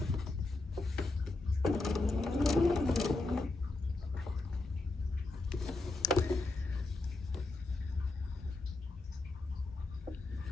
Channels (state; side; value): quieter; right; 3.2 dB